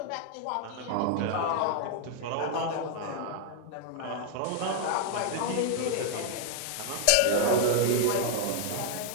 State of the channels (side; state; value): both; different; correlation 0.00